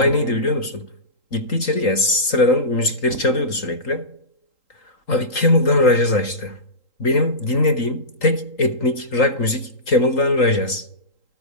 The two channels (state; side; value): late; right; 3.8 ms